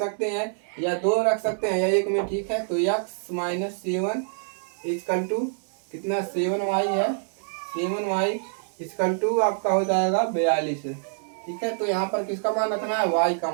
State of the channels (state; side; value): silent; left; digital silence